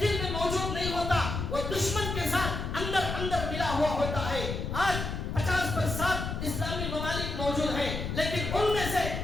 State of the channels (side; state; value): left; noise; rumble, 4 dB below the sound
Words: میں موجود نہیں ہوتا, وہ دشمن کے ساتھ اندر اندر ملا ہوا ہوتا ہے. آج 50% اسلامی ممالک موجود ہیں, لیکن ان میں سے